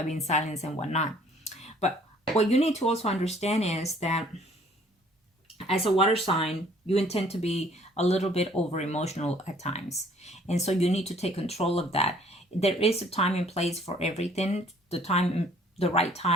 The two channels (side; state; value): both; normal; correlation 0.58